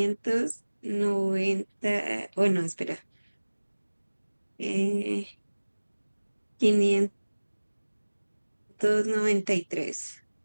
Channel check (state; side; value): inverted; both; correlation -1.00